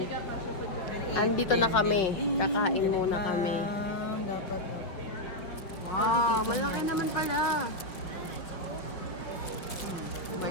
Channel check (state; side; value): late; right; 5.7 ms